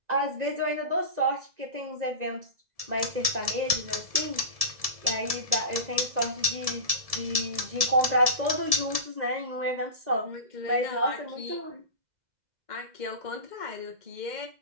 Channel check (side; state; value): left; late; 2.0 ms